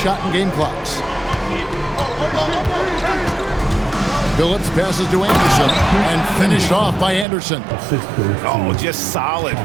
and game clocks. Phillips passes to Anderson and finished off by Anderson. Oh, just solid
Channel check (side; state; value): left; drops out; at 7.2 s